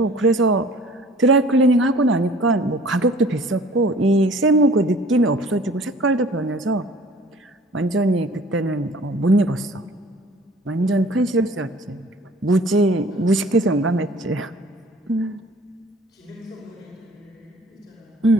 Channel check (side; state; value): both; normal; correlation 0.49